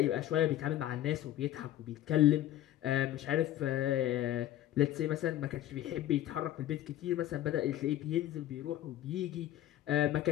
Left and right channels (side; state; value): right; quieter; 13.1 dB